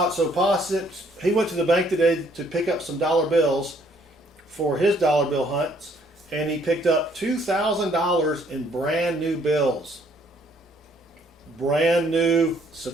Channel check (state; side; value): normal; both; correlation 0.65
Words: So Pa he went to the bank today to pick up some dollar bills for his dollar bill hunts, and he picked up $2,000 in brand new bills. Brand new